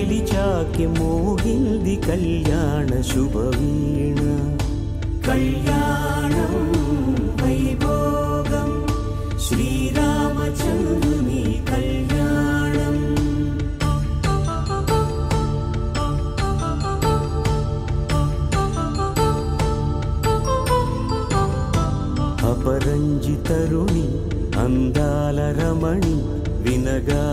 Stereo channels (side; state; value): both; identical; correlation 1.00